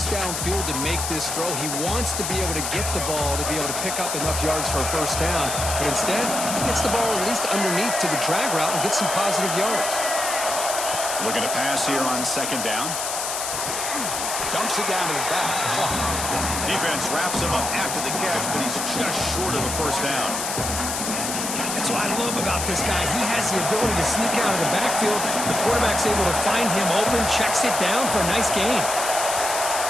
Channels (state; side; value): noise; left; hiss, 3 dB below the sound